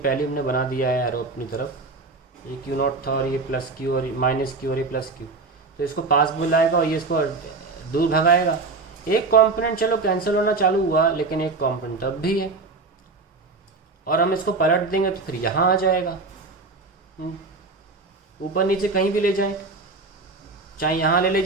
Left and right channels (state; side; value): quieter; left; 3.8 dB